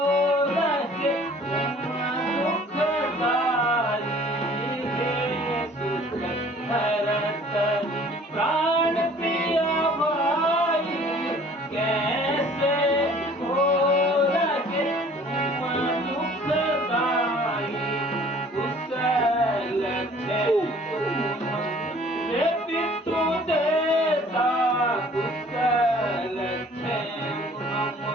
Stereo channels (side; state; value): both; normal; correlation 0.52